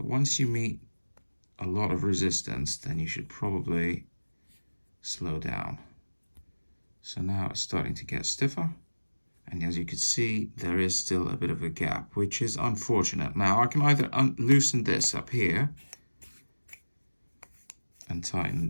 once you meet a lot of resistance, then you should probably slow down. So now it's starting to get stiffer. And as you can see, there is still a bit of a gap, which is unfortunate. Now I can either loosen this up here and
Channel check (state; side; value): inverted; both; correlation -1.00